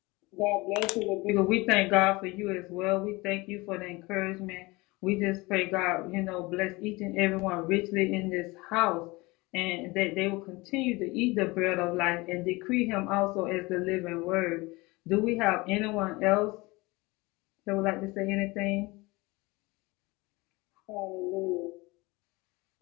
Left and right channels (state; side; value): quieter; right; 23.2 dB